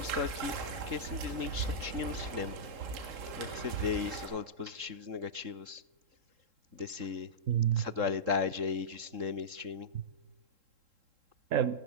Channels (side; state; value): left; late; 3.7 ms